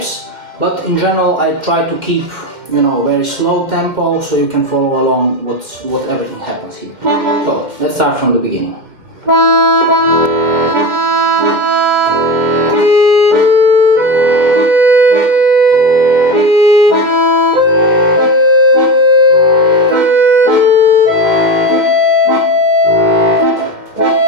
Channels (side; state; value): left; late; 2.1 ms